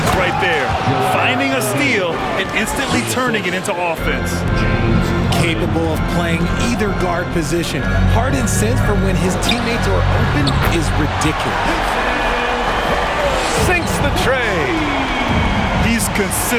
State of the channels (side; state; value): both; identical; correlation 1.00